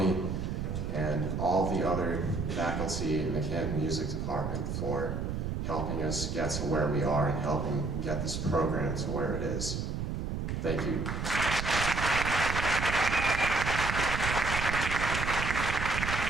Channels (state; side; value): noise; right; rumble, 3 dB below the sound